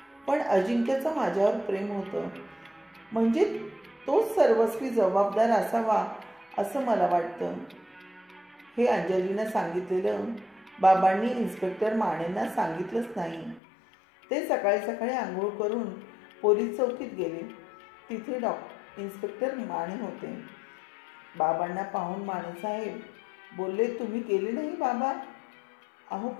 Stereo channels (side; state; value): right; drops out; at 13.6 s